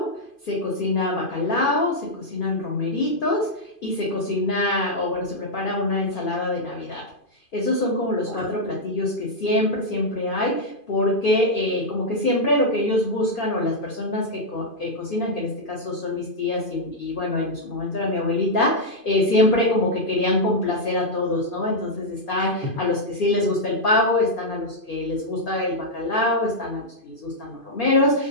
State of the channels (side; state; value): right; late; 2.5 ms